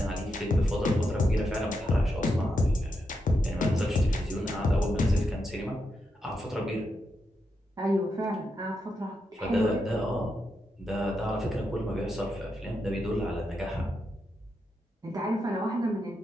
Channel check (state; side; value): normal; both; correlation 0.84